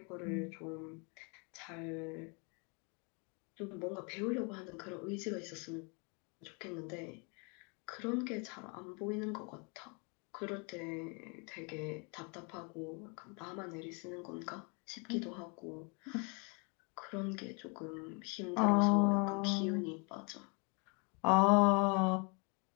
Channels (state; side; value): quieter; right; 34.1 dB